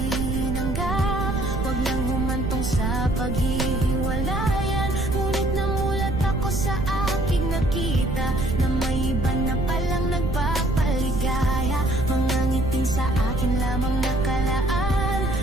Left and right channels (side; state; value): right; noise; rumble, 2 dB below the sound